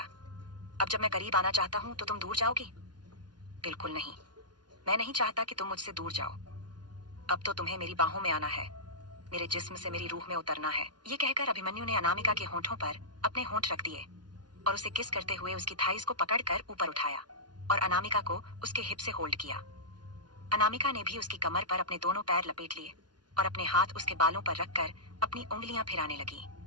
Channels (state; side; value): late; left; 0.70 ms